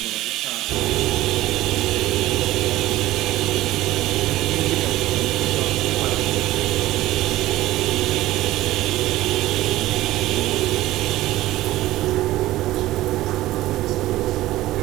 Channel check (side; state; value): left; quieter; 16.1 dB